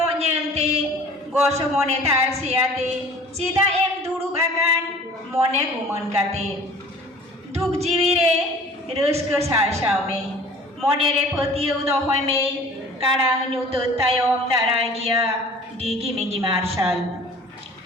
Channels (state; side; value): normal; both; correlation 0.47